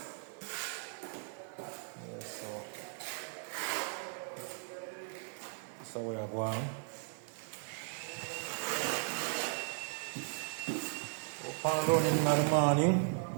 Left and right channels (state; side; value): silent; left; 53 dB below the other